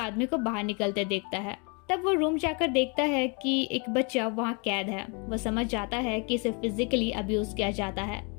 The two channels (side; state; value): right; quieter; 33.8 dB